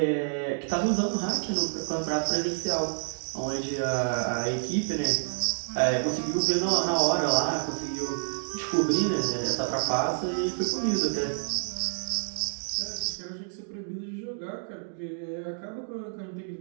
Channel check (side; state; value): left; silent; digital silence